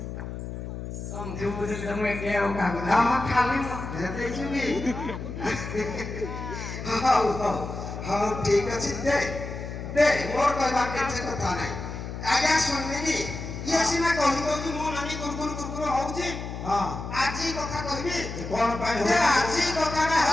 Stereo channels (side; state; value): left; noise; hum, 7 dB below the sound